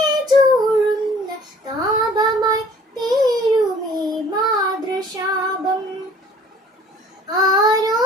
ചൂഴുന്ന താപമായി തീരുമീ മാതൃശാപം. ആരോ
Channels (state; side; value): normal; both; correlation 0.52